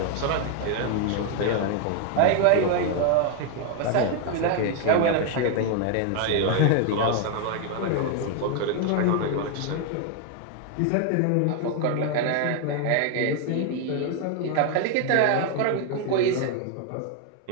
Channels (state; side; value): different; both; correlation 0.01